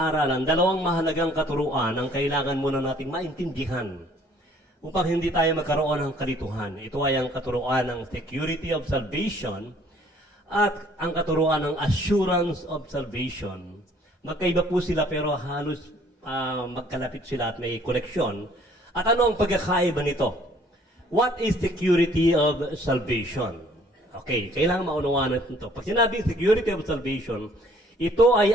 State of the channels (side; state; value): both; normal; correlation 0.58